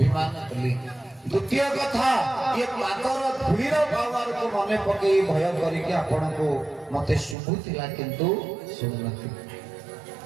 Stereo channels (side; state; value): left; drops out; at 7.4 s